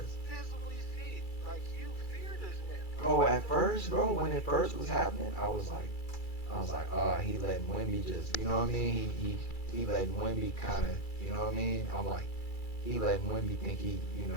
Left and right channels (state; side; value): late; right; 2.3 ms